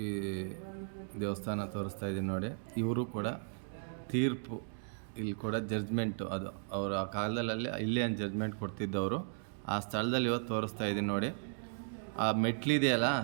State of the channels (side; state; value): left; silent; digital silence